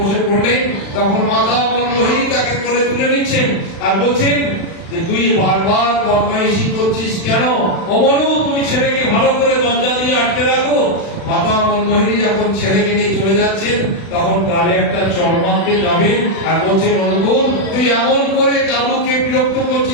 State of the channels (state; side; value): late; right; 36 ms